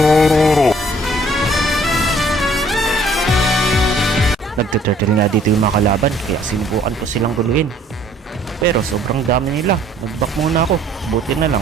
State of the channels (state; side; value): normal; both; correlation 0.59